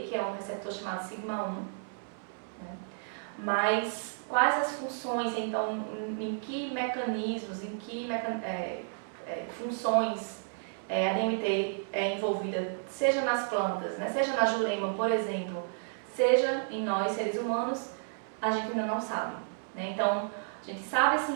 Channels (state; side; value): silent; left; 56 dB below the other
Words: que é um receptor chamado sigma-1, né? Mas quais as funções, então, em que mecanismos, em que funções a DMT é envolvida, seja nas plantas, né, seja na jurema, por exemplo, seja em nós, seres humanos, a gente ainda não sabe, né? Então, a gente sabe